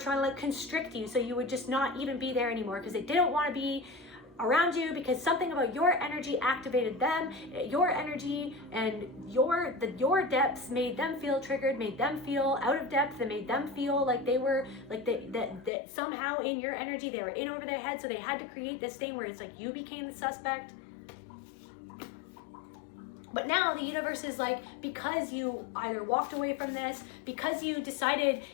to like constrict you so you would just not even be there anymore, because they didn't want to be around you, because something about your energy activated them. Your energy and your depths made them feel triggered, made them feel out of depth, that made them feel like they were like that somehow in your energy they were in over their head. So they had to create this thing where it's like you became the suspect. But now the universe is like, because you either walked away from this, because you decided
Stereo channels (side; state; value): right; drops out; at 15.7 s